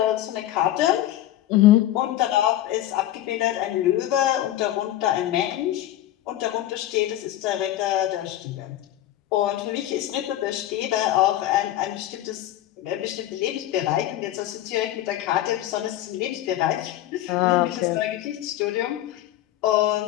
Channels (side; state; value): right; quieter; 13.5 dB